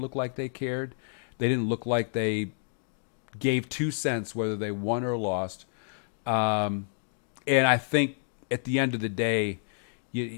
look like they cared. They didn't look like they gave 2 cents whether they won or lost. And I think at the end of the day,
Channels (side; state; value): right; silent; digital silence